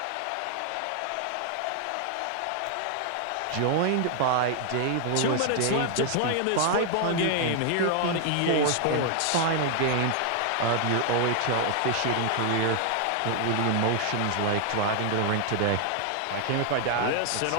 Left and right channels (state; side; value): different; both; correlation 0.00